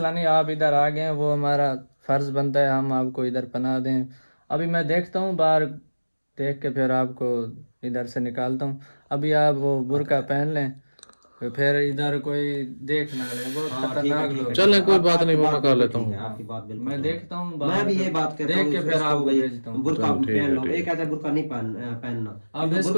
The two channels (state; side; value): inverted; both; correlation -1.00